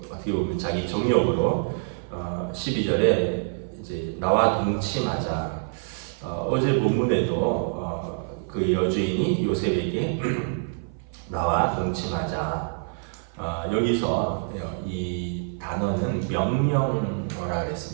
어떻게 보면 자기 정력으로 12절에 이제 나와 동침하자. 어제 본문에도 그 여주인이 요셉에게 나와 동침하자. 여기서 이 단어는 명령어라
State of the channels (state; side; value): silent; left; 56 dB below the other